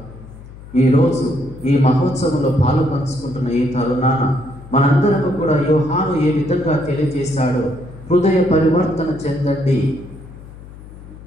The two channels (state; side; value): noise; left; hum, 17 dB below the sound